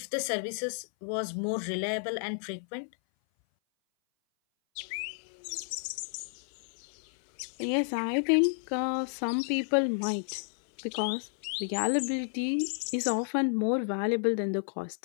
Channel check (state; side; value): silent; right; 57 dB below the other